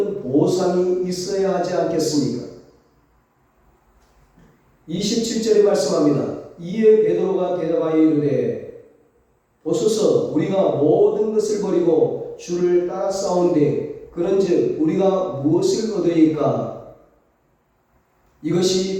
보상이 있어야 하지 않겠습니까? 27절에 말씀합니다. 이에 베드로가 대답하여 이르되 보소서 우리가 모든 것을 버리고 주를 따라싸운데 그런즉 우리가 무엇을 얻으리까?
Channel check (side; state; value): both; identical; correlation 1.00